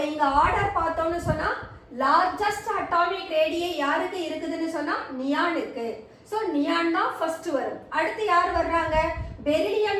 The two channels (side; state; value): both; identical; correlation 1.00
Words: இங்க ஆர்டர் பார்த்தோம்னு சொன்னா லார்ஜஸ்ட் அட்டாமிக் ரேடியை யாருக்கு இருக்குதுன்னு சொன்னா நியானுக்கு. சோ நியான் தான் ஃபர்ஸ்ட் வரும். அடுத்து யார் வர்றாங்க? Beryllium